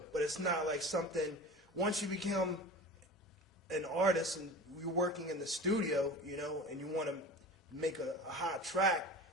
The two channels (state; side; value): normal; both; correlation 0.35